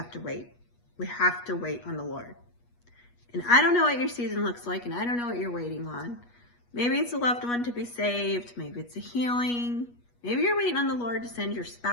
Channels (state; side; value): late; right; 8.3 ms